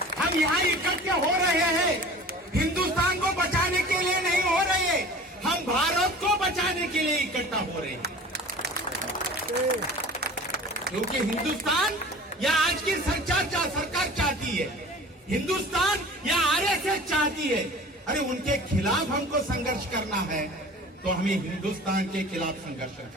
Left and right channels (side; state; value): both; normal; correlation 0.41